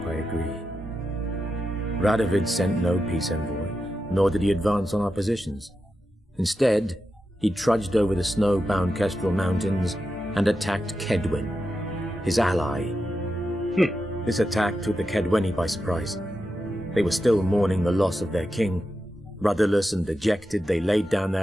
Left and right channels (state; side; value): normal; both; correlation 0.89